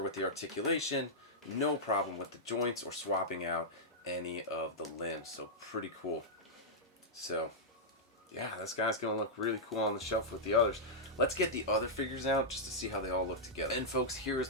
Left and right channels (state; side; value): normal; both; correlation -0.09